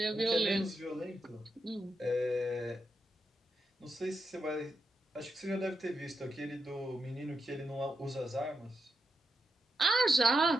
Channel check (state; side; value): normal; both; correlation 0.86